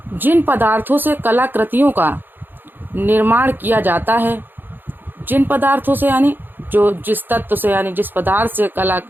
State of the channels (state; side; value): late; left; 0.094 ms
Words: जिन पदार्थों से कलाकृतियों का निर्माण किया जाता है, जिन पदार्थों से यानी जो जिस तत्व से, यानी जिस पदार्थ से